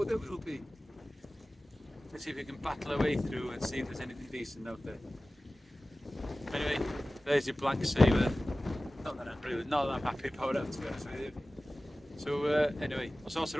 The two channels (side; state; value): both; normal; correlation 0.97